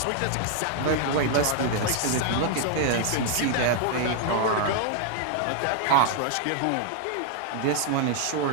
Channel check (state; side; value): different; both; correlation 0.00